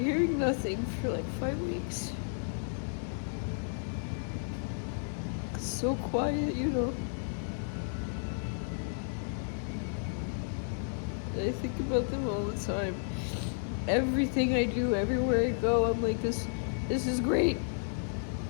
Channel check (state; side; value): silent; right; digital silence